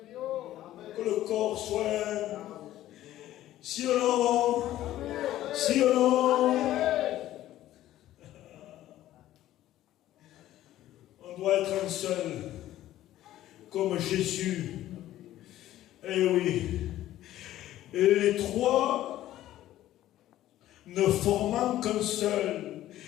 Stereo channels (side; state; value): right; quieter; 13.8 dB